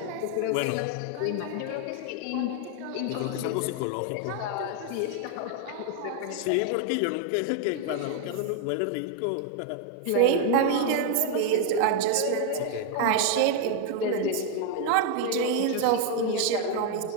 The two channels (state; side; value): different; both; correlation 0.01